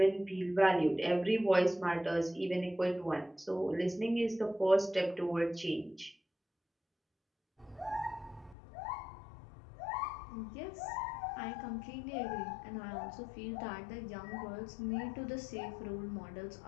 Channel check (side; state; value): right; drops out; at 8.6 s